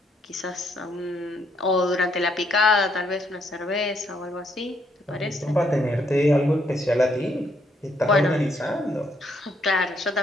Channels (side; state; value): both; normal; correlation 0.72